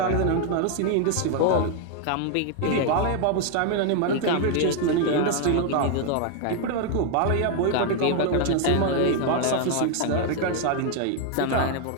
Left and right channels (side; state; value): both; different; correlation 0.00